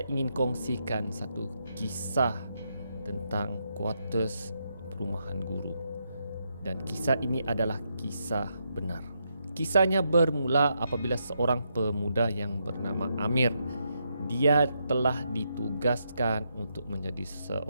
ingin kongsikan satu kisah tentang quarters perumahan guru. Dan kisah ini adalah kisah benar. Kisahnya bermula apabila seorang pemuda yang bernama Amir, dia telah ditugaskan untuk menjadi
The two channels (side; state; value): both; inverted; correlation -0.80